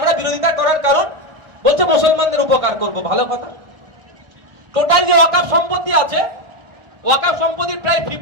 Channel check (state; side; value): late; left; 1.4 ms